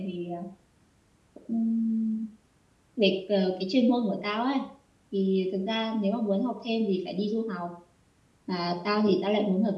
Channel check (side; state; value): both; identical; correlation 1.00